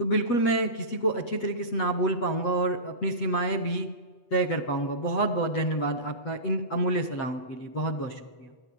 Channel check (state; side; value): late; right; 8.2 ms